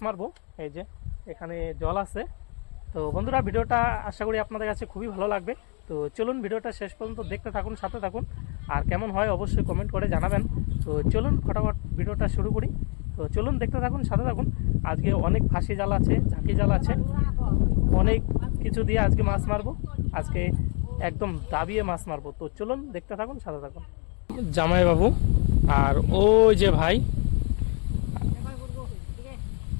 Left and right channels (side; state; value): right; quieter; 36.0 dB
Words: মারবো। এই যে এখানে জল আছে। তো বন্ধুরা, ভিডিওটা আশা করি আপনাদের কাছে খুবই ভালো লাগবে। তো চলুন ভিডিওটা শেষ পর্যন্ত দেখতে থাকুন, সাথে থাকুন। আর কেমন হয় অবশ্যই কমেন্ট করে জানাবেন। তো চলুন ফটাফট ভিডিওটা শুরু করি। তো চলুন দেখতে থাকুন, সাথে থাকুন। আজকে অনেক ফাঁসি জাল আছে, ঝাঁকি জাল আছে, অনেক কিছু দিয়ে আজকে মাছ মারবো। আজকে একদম দাবিয়ে মাছ মারবো। তো চলুন দেখতে থাকুন, সাথে থাকুন। জামাইবাবু আর ওই যে ভাই,